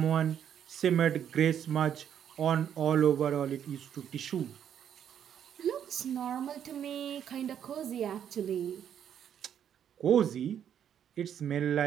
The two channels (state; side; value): quieter; left; 9.2 dB